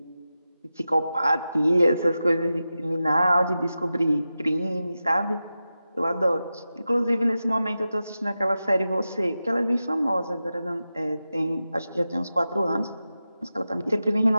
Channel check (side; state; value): both; inverted; correlation -0.92